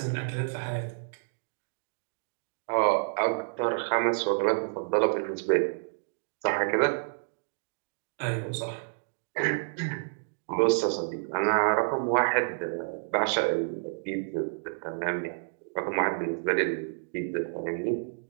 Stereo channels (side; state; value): left; silent; digital silence